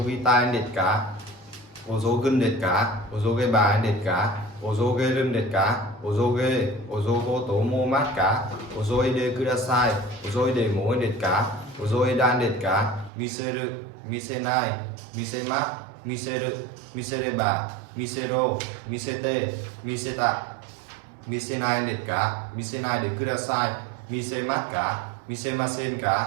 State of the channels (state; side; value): drops out; left; at 13.1 s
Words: ぎたいですか遅ぐんですか遅げばいですか遅げるんですか遅げ遅ごと思いますか遅いでください遅いでもいいですか遅いだんですか見せる見せない見せます見せる見せれば見せろ見せて見せた見せないですか見せないでください見せますか見せません